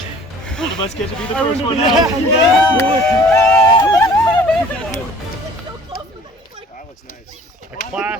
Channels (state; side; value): normal; both; correlation 0.51